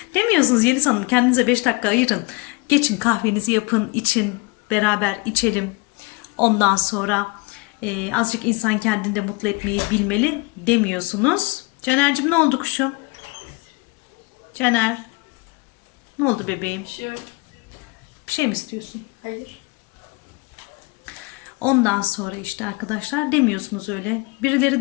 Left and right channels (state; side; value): quieter; right; 26.8 dB